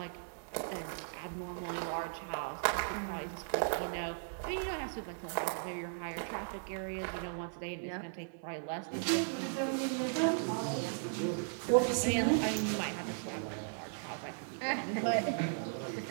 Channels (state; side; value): silent; left; digital silence